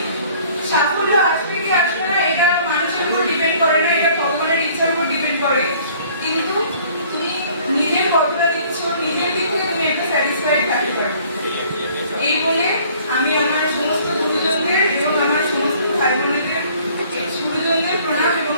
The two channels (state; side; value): inverted; both; correlation -0.55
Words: সাফল্য আসবে কি আসবে না এটা মানুষের উপর ডিপেন্ড করে না, এটা ভগবানের ইচ্ছার উপর ডিপেন্ড করে। কিন্তু তুমি নিজের কতটা দিচ্ছ, নিজের দিক থেকে তুমি একটা স্যাটিসফাইড থাকতে পারো। এই বলে আমি আমার সমস্ত গুরুজনদের এবং আমার সমস্ত ভাই বোনেদের গুরুজনদের প্রণাম এবং